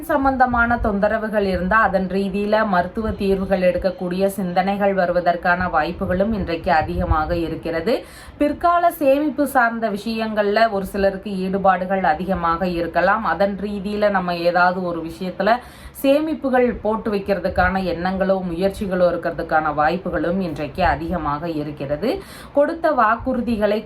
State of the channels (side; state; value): both; identical; correlation 1.00